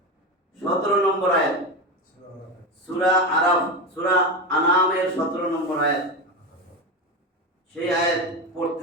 17 নম্বর আয়াত, সূরা আরাফ, সূরা আনামের 17 নম্বর আয়াত, সেই আয়াত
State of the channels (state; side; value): normal; both; correlation 0.19